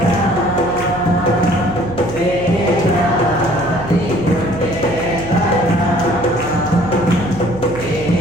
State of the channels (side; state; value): right; noise; hum, 12 dB below the sound